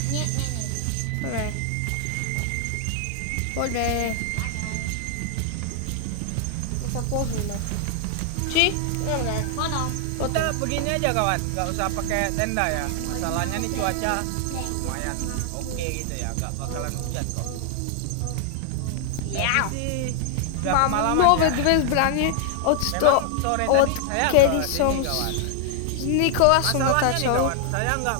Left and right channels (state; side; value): different; both; correlation 0.00